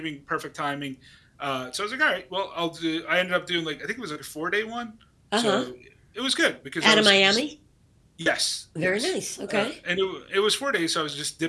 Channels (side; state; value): both; identical; correlation 1.00